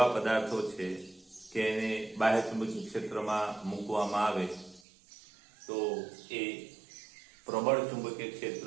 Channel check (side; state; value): left; drops out; at 4.8 s